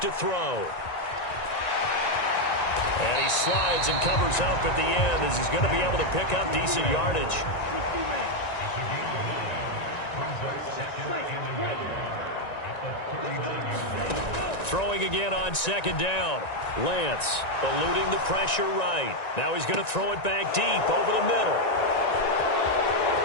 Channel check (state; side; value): late; right; 1.9 ms